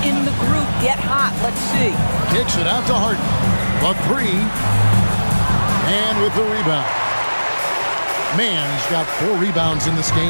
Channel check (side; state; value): both; inverted; correlation -1.00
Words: in the group get hot? Let's see. Kicks it out to Harden. The 3. And with the rebound. Man's got 4 rebounds in this